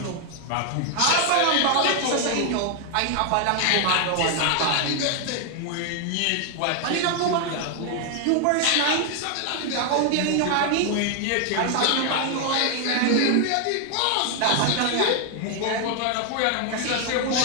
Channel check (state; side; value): different; both; correlation 0.00